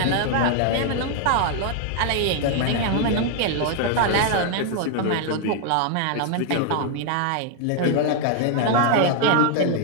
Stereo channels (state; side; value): different; both; correlation 0.00